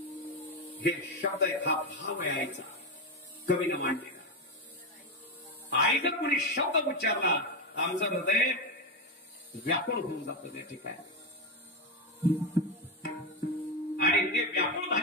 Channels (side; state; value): both; normal; correlation 0.11